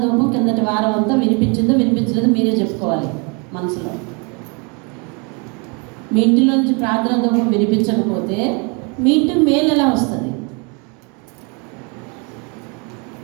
కిందటి వారం అంతా వినిపించిందో వినిపించలేదో మీరే చెప్పుకోవాలి మనసులో. మీ ఇంటిలో నుంచి ప్రార్థన ధూపం వినిపించకపోతే మీ ఇంటికి మేలు ఎలా వస్తుంది?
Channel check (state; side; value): quieter; left; 32.8 dB